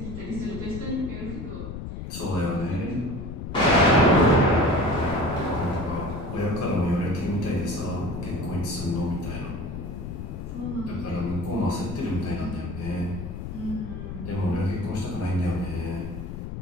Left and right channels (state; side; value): noise; left; rumble, 7 dB below the sound